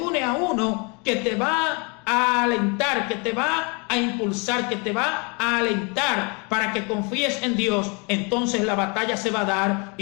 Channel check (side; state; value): right; quieter; 32.2 dB